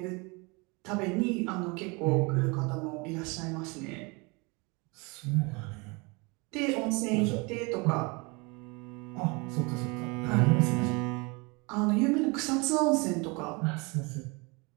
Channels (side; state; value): left; quieter; 28.4 dB